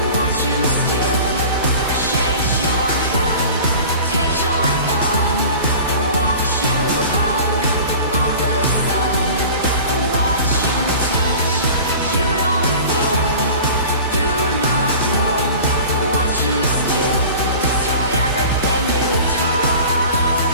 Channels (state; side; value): inverted; both; correlation -0.39